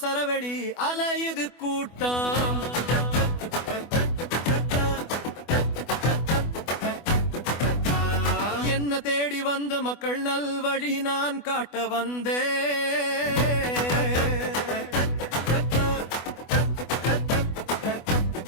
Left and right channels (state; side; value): late; right; 24 ms